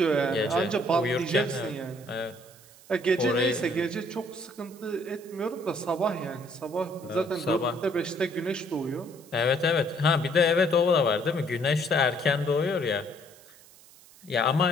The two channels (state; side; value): noise; right; hiss, 24 dB below the sound